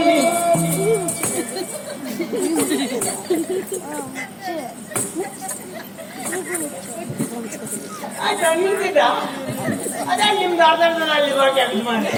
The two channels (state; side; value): identical; both; correlation 1.00